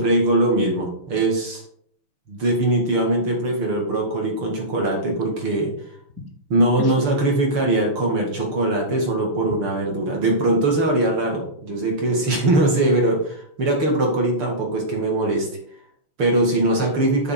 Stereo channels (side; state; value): left; late; 6.7 ms